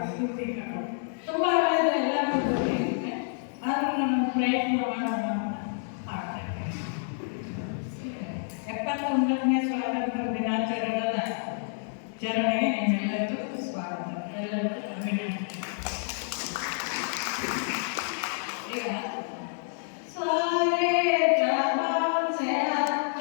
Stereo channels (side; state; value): right; silent; digital silence